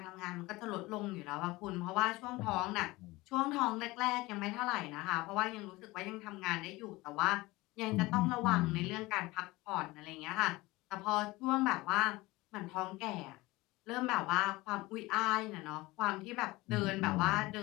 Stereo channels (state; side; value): quieter; right; 20.8 dB